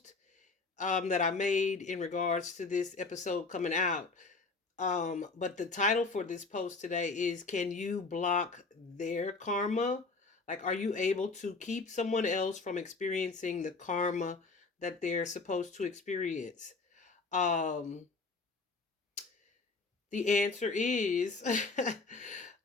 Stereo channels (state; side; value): quieter; right; 3.9 dB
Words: that I made in regards to this episode coming out. But the title for this post today is Can You Block Their Karma? Like, are you able to keep someone else from experiencing the karma that they're supposed to experience? Um, the answer is,